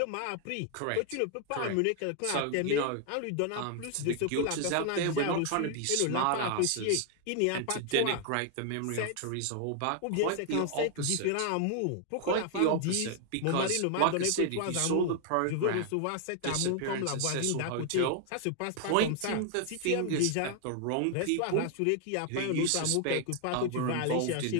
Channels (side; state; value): both; different; correlation 0.00